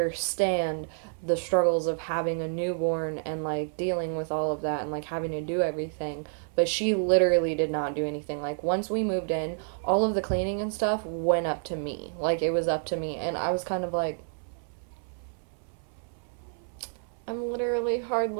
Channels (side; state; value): left; silent; 59 dB below the other